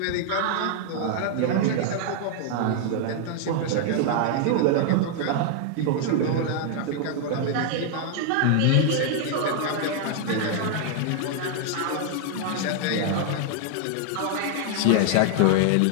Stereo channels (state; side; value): different; both; correlation 0.00